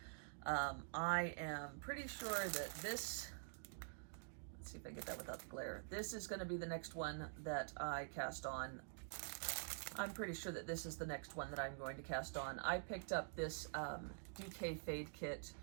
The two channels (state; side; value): silent; left; digital silence